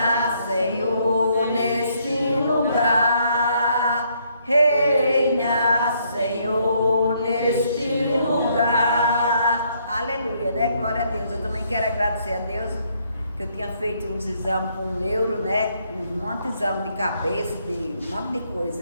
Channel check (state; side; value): inverted; both; correlation -0.70